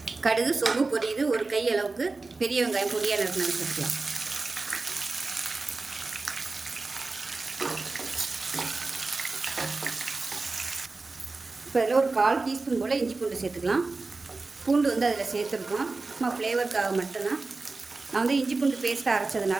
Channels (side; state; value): left; quieter; 3.7 dB